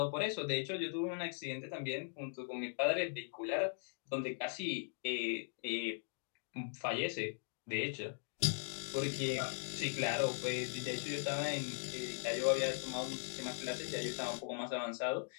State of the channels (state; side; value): silent; right; digital silence